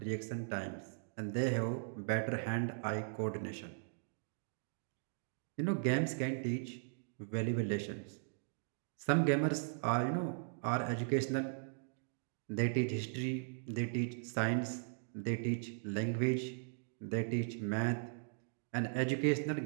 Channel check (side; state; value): left; silent; digital silence